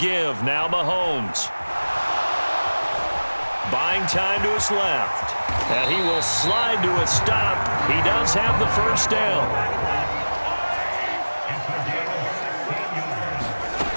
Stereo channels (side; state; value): both; inverted; correlation -1.00